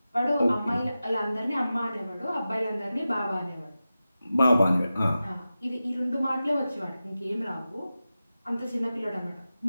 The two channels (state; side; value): inverted; both; correlation -0.93